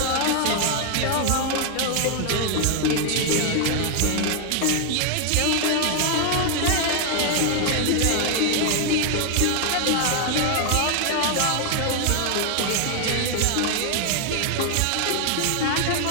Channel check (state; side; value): different; both; correlation 0.00